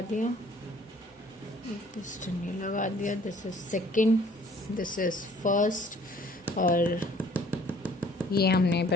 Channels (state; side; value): normal; both; correlation 0.56